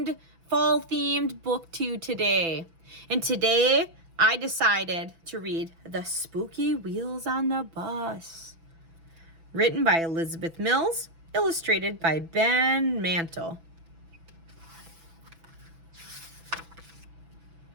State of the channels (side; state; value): left; late; 6.0 ms